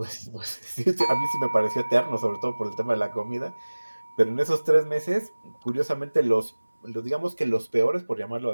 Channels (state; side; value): inverted; both; correlation -1.00